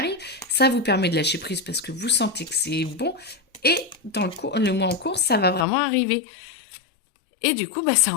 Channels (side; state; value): right; drops out; at 5.7 s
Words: ça vous permet de lâcher prise parce que vous sentez que c'est bon, et dans le mois en cours, ça va vraiment arriver. Et du coup, bah, ça